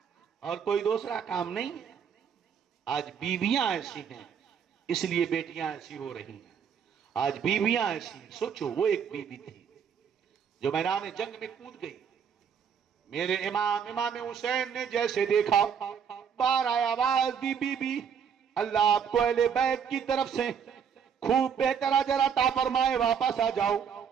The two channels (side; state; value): left; quieter; 7.4 dB